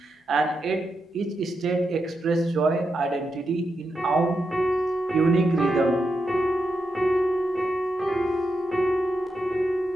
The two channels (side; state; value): both; normal; correlation 0.85